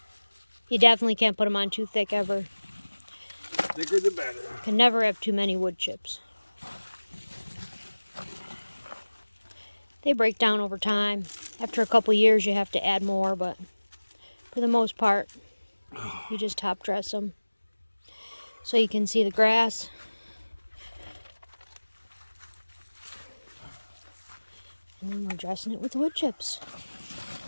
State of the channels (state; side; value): inverted; both; correlation -1.00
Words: You definitely can't put them on too thick ever. Thicker the better. Can never have too many wood chips. They break down over time. After a couple years you have to add more, but for the most part you just top dress them. So you can see the grass. And then we're dressing it with wood chips.